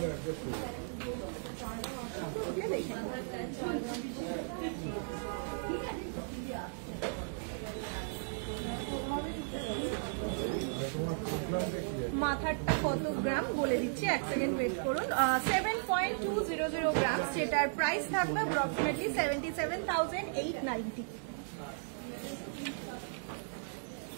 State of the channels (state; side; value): silent; left; digital silence